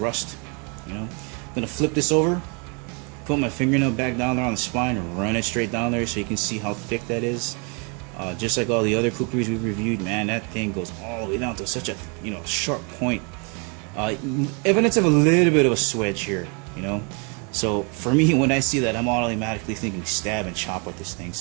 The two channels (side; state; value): left; quieter; 35.0 dB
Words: I'm gonna flip this over, put my fingernail back down there on the spine, and run it straight down there so you can see how thick that is. Just like all the other kukris we've reviewed, man, that thing goes all the way down to such a sharp point. Evidence of a little bit of a swedge here, So for me, when I see that, I'm automatically thinking stab and chop with this thing.